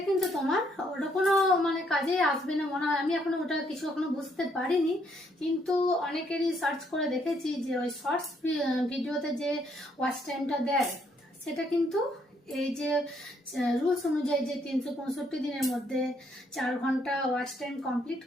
কিন্তু তোমার ওটা কোনো মানে কাজে আসবে না মনে হয়। আমি এখনো ওটা কিছু এখনো বুঝতে পারিনি, কিন্তু অনেকেরই সার্চ করে দেখেছি যে ওই শর্টস ভিডিওতে যে ওয়াচ টাইমটা দেয়, সেটা কিন্তু এই যে রুলস অনুযায়ী যে 365 দিনের মধ্যে 4 ঘন্টা ওয়াচ টাইম কমপ্লিট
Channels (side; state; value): both; normal; correlation 0.70